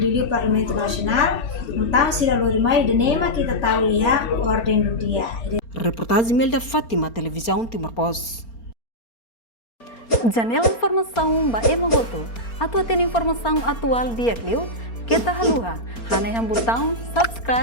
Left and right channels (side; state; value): right; late; 4.3 ms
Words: do Parlamento Nacional, então se lalu mai nema kita tahu ya ordem do dia. Reportagem Melda Fátima, Televisão Timor Post. Janela informação ba emogoto. Atau tem informação atual dia kliu, kita haluha. Haneham botão